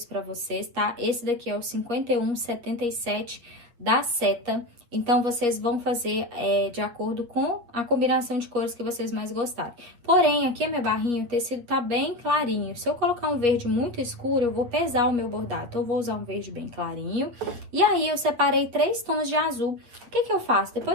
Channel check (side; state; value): left; late; 8.5 ms